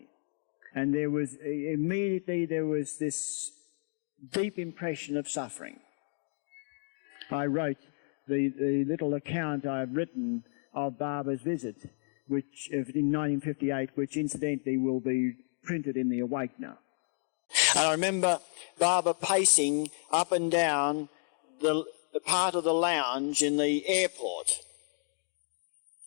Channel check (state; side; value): silent; right; 57 dB below the other